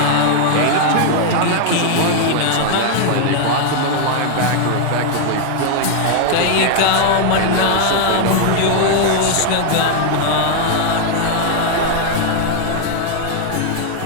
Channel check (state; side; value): different; both; correlation 0.00